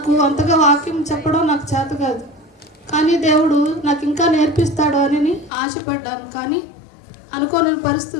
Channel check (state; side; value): drops out; right; at 5.5 s